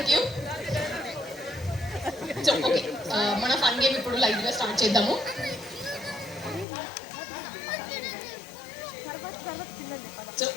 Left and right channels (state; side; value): drops out; right; at 6.7 s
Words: you. So okay, మన ఫన్ గేమ్ ఇప్పుడు లైవ్ గా స్టార్ట్ చేద్దాము. సో